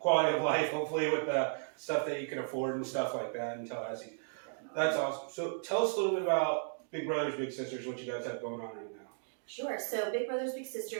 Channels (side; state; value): left; silent; digital silence